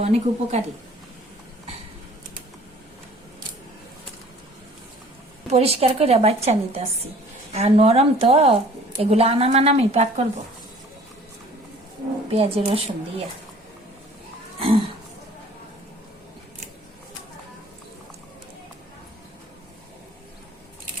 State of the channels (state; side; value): normal; both; correlation 0.51